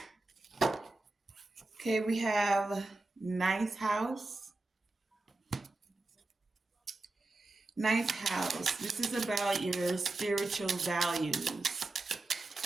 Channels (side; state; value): left; quieter; 3.1 dB